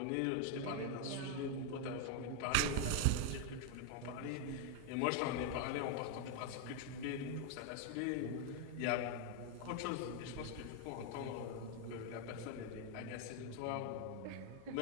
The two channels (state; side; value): different; both; correlation 0.01